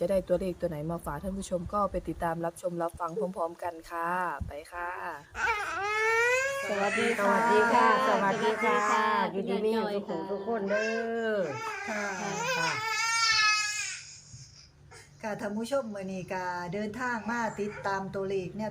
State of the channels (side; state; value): both; identical; correlation 1.00